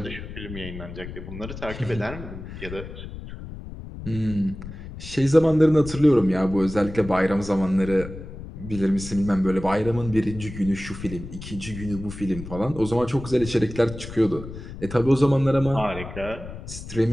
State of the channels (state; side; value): noise; left; rumble, 11 dB below the sound